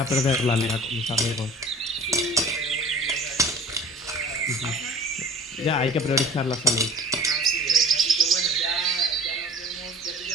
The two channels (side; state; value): both; normal; correlation 0.46